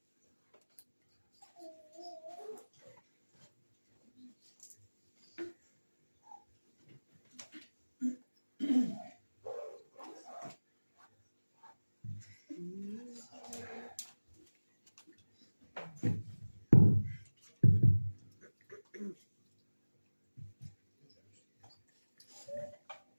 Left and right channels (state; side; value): inverted; both; correlation -1.00